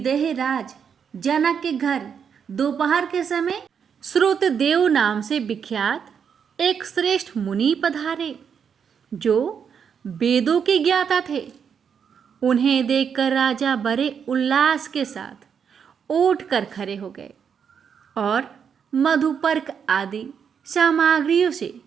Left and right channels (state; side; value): quieter; left; 7.2 dB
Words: राज जनक के घर दोपहर के समय श्रुतदेव नाम से विख्यात एक श्रेष्ठ मुनि पधारे, जो वेदों के ज्ञाता थे। उन्हें देखकर राजा बड़े उल्लास के साथ उठ कर खड़े हो गए और मधुपर्क आदि सामग्रियों से